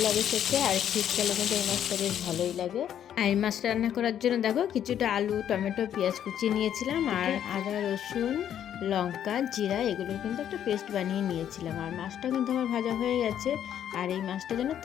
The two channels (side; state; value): right; quieter; 10.0 dB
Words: লাগে খেতে, আর শীতকালে কিন্তু এই মাছটা বেশ ভালোই লাগে। আর এই মাছটা রান্না করার জন্য দেখো কিছুটা আলু টমেটো পেঁয়াজ কুচিয়ে নিয়েছিলাম, আর আদা রসুন লঙ্কা জিরা এগুলো কিন্তু একটা পেস্ট বানিয়ে নিয়েছিলাম। আর মাছটা কিন্তু আমার ভাজা হয়ে গেছে। আর এই মাছটা জানো